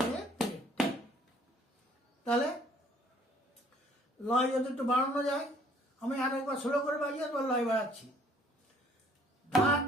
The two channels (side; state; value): both; normal; correlation 0.59